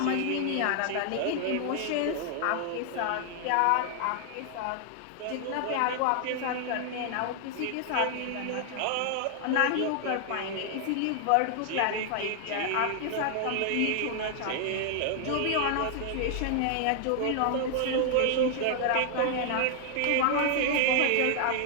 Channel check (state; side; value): different; both; correlation 0.00